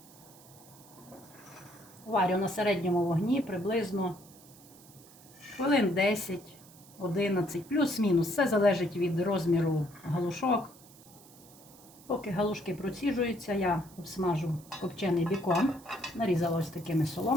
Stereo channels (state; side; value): noise; right; hiss, 23 dB below the sound